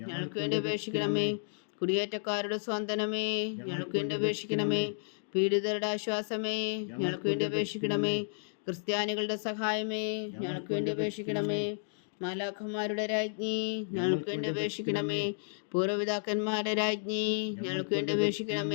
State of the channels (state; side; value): silent; right; digital silence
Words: വേണ്ടി അപേക്ഷിക്കണമേ. കുടിയേറ്റക്കാരുടെ സ്വാന്തനമേ ഞങ്ങൾക്ക് വേണ്ടി അപേക്ഷിക്കണമേ. പീഡിതരുടെ ആശ്വാസമേ ഞങ്ങൾക്ക് വേണ്ടി അപേക്ഷിക്കണമേ. ക്രിസ്ത്യാനികളുടെ സഹായമേ ഞങ്ങൾക്ക് വേണ്ടി അപേക്ഷിക്കണമേ. മാലാഖന്മാരുടെ രാജ്ഞി ഞങ്ങൾക്ക് വേണ്ടി അപേക്ഷിക്കണമേ. പൂർവ്വപിതാക്കന്മാരുടെ രാജ്ഞി ഞങ്ങൾക്ക് വേണ്ടി